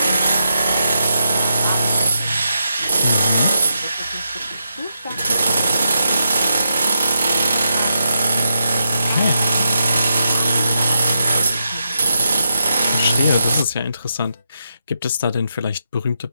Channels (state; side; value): inverted; both; correlation -0.84